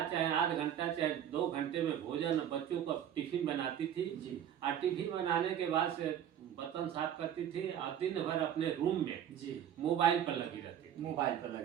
चाहे 8 घंटा चाहे 2 घंटे में भोजन बच्चों को टिफिन बनाती थी जी। और टिफिन बनाने के बाद से बर्तन साफ करती थी और दिन भर अपने रूम में जी मोबाइल पर लगी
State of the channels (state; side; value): quieter; left; 10.0 dB